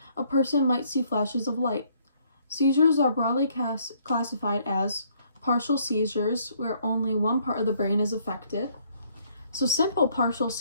a person might see flashes of light. Seizures are broadly classified as partial seizures, where only one part of the brain is affected. So simple partial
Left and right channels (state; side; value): inverted; both; correlation -0.66